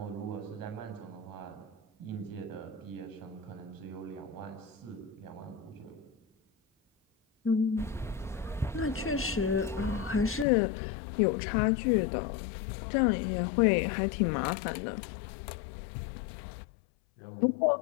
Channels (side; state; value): right; drops out; at 10.5 s